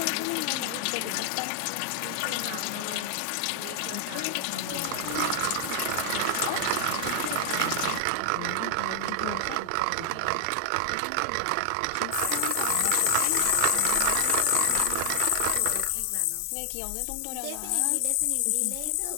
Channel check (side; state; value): both; different; correlation 0.00